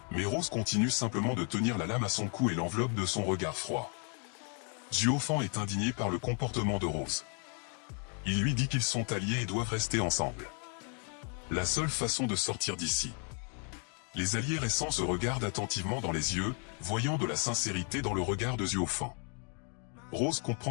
Mais Rose continue simplement de tenir la lame à son cou et l'enveloppe de son regard froid. Zuofan est indigné par le comportement de Rose. Il lui dit qu'ils sont alliés et doivent rester ensemble. La seule façon de sortir d'ici. Les alliés récents se regardent attentivement dans les yeux, voyant de la sincérité dans le regard de Zuofan. Rose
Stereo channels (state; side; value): quieter; right; 39.5 dB